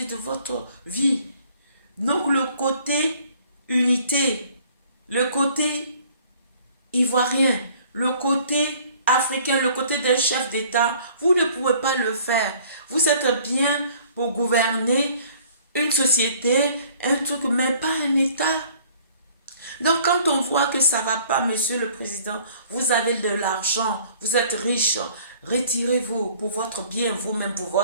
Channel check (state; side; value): inverted; both; correlation -0.55